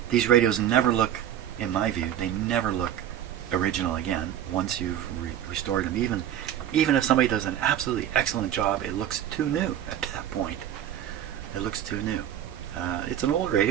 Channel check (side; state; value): left; quieter; 10.8 dB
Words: These radios never look, in my view, they never look original again once you've restored them. Even if somebody does an absolutely excellent job, it looks too new at that point. It looks too new. It's an old